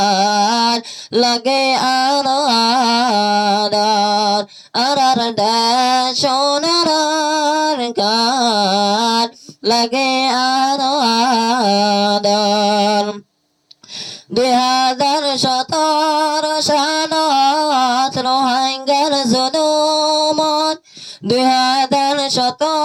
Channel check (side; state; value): both; identical; correlation 1.00